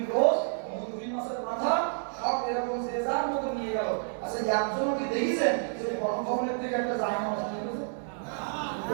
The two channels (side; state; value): left; silent; digital silence